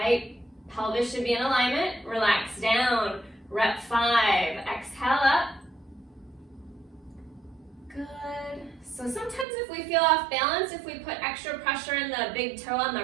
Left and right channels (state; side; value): drops out; left; at 9.5 s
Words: Pelvis should be in alignment. Relax down. Rep 5. Exhale up. Good. So sometimes if we feel off balance, if we put extra pressure in the big toe on the